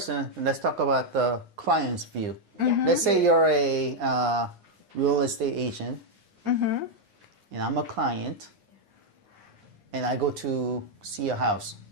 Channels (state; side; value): late; left; 9.7 ms